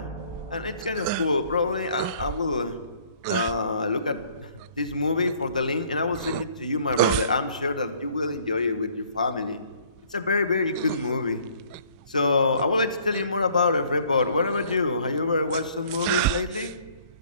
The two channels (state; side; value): inverted; both; correlation -0.58